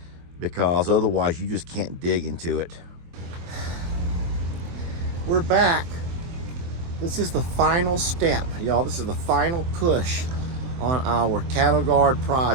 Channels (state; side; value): late; left; 23 ms